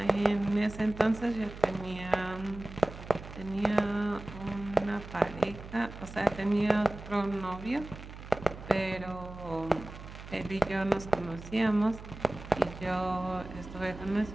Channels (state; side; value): noise; right; hum, 13 dB below the sound